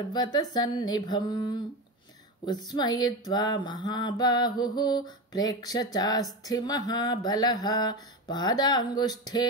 उत्स्मयित्वा महाबाहुः प्रेक्ष्य चास्थि महाबलः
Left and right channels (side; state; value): both; normal; correlation 0.20